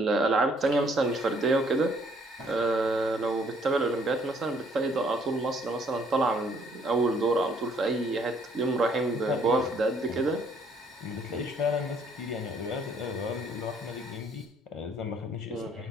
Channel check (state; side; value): normal; both; correlation 0.63